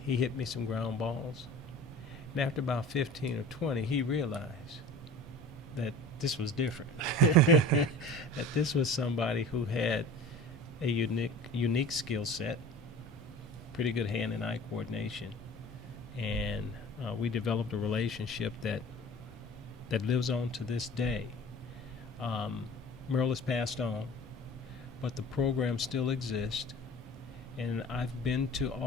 he hit me some ground balls. And after about 15 or 20, he realized that this was different. That this was somebody who had a unique skill set, pretty good hand and eye coordination. And we developed a relationship that lives on to this day. Merle has passed on, but the program still exists. And I've been to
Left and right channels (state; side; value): normal; both; correlation 0.40